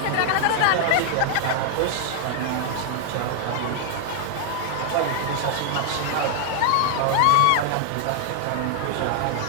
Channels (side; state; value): both; different; correlation 0.00